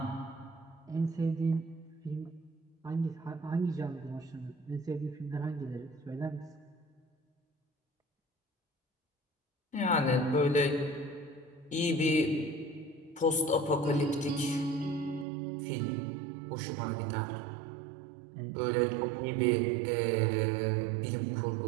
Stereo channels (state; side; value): drops out; left; at 15.2 s